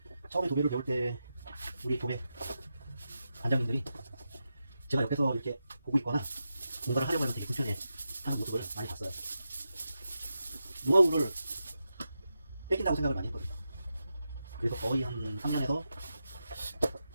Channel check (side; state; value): both; inverted; correlation -0.89